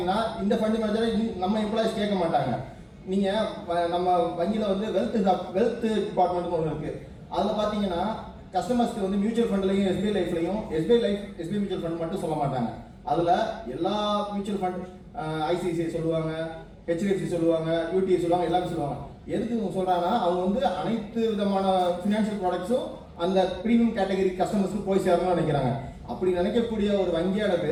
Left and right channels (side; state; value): both; identical; correlation 1.00